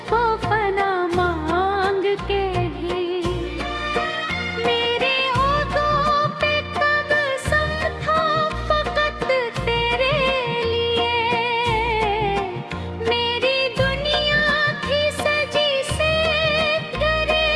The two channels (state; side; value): identical; both; correlation 1.00